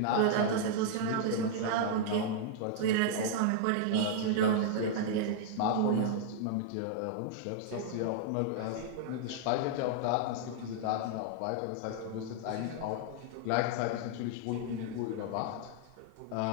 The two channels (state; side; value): different; both; correlation -0.01